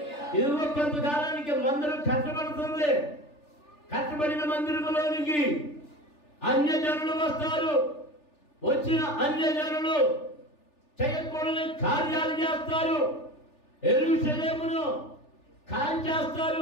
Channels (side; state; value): right; late; 3.4 ms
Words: ఇదిగో కొంతకాలానికి మందిరం కట్టబడుతుంది. కట్టబడిన మందిరములోనికి అన్యజనులు వస్తారు. వచ్చిన అన్యజనులు చేయకూడని కార్యాలు చేస్తారు. యెరూషలేమును